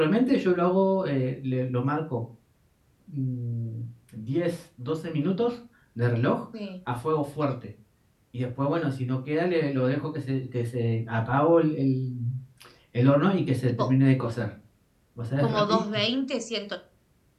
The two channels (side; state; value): both; identical; correlation 1.00